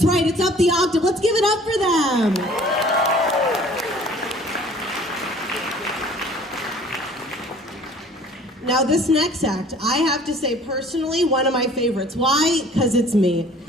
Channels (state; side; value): normal; both; correlation 0.51